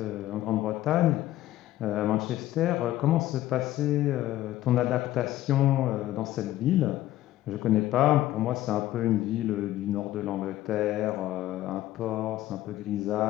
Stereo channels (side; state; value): right; quieter; 14.6 dB